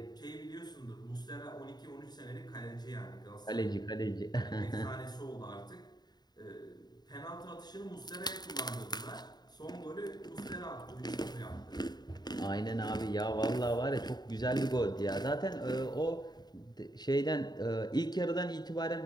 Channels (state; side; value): late; right; 0.20 ms